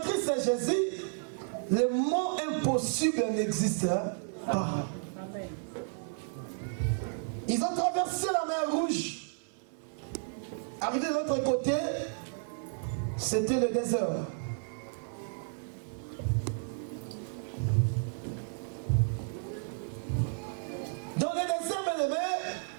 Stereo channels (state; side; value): silent; left; 56 dB below the other